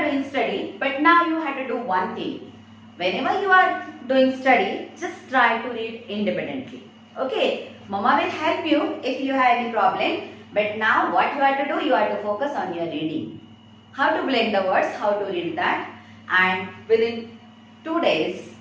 doing study, but now you have to do one thing. Whenever you are doing study, just try to read independently. Okay. Mama will help you if you have any problem. But now what you have to do, you have to focus on your reading. How to blend the words, how to read that, and within 2 days,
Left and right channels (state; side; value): identical; both; correlation 1.00